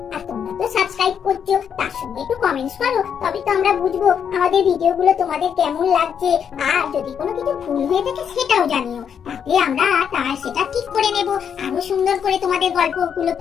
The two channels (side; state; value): right; quieter; 7.7 dB